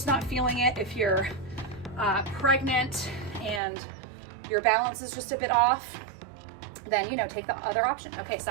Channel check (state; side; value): drops out; left; at 3.6 s